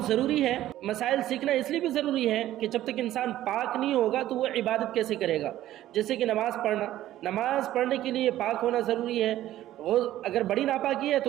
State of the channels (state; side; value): quieter; left; 13.7 dB